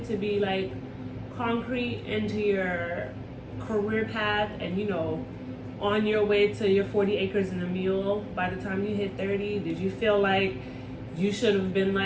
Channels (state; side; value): identical; both; correlation 1.00